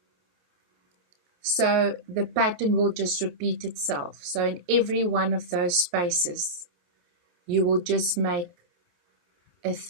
So the pattern will just repeat itself. So in every one of those spaces, you will just make a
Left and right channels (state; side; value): late; left; 28 ms